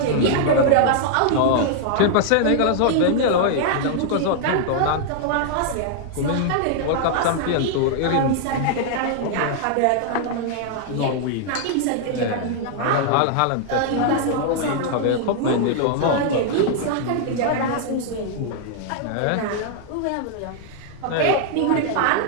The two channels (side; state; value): both; different; correlation 0.00